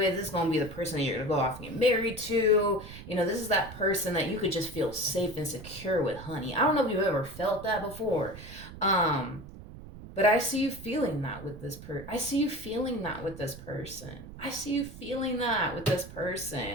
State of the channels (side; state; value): right; noise; rumble, 14 dB below the sound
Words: This is gonna be the person that you're gonna go off and get married to. You know, this is that person that you could just feel safe and secure with, honey. I don't know if you've ever felt that before. But I see you feeling that with this person. I see you feeling that with this person. I see you feeling that with this